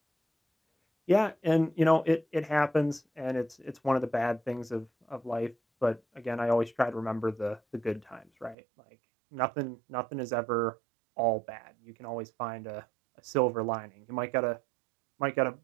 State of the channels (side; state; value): left; drops out; at 8.6 s